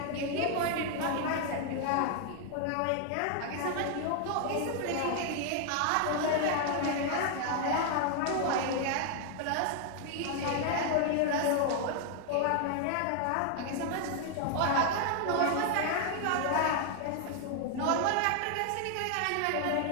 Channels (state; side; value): different; both; correlation 0.00